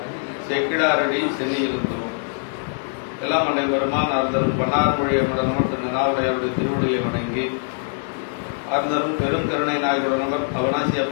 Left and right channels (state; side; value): silent; right; digital silence